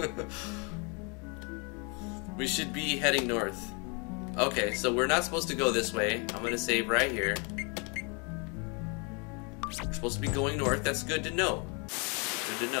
We should be heading north. Okay, so we're not supposed to go this way. I'm going to save right here. We're supposed to be going north. That's good to know. Good to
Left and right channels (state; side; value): quieter; right; 33.3 dB